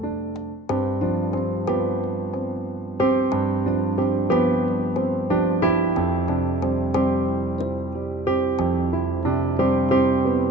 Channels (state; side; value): normal; both; correlation 0.48